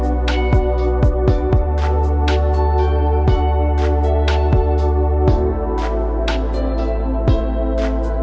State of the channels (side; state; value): both; identical; correlation 1.00